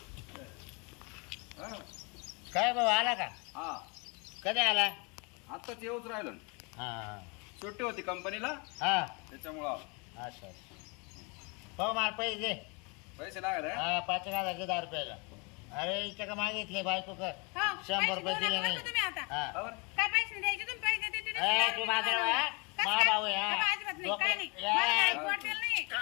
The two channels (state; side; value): quieter; right; 31.3 dB